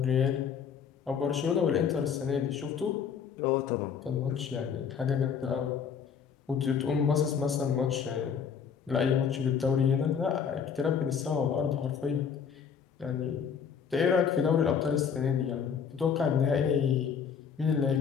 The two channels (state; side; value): quieter; right; 7.0 dB